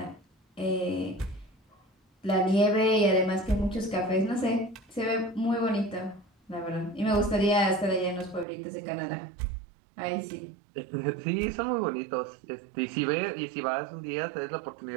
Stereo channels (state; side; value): drops out; left; at 8.5 s